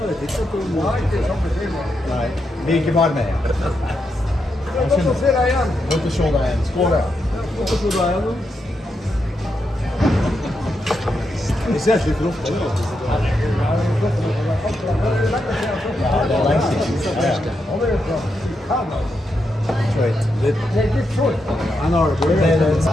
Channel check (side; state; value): both; normal; correlation 0.84